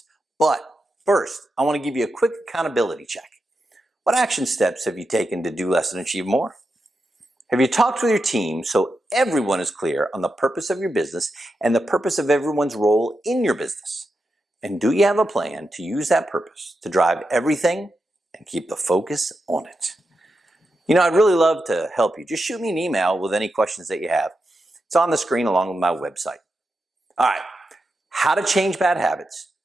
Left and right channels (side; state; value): both; normal; correlation 0.88